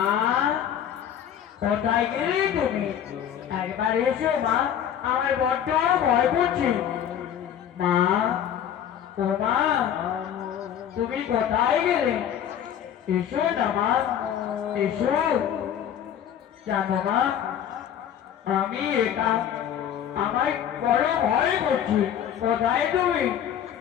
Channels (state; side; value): quieter; right; 9.6 dB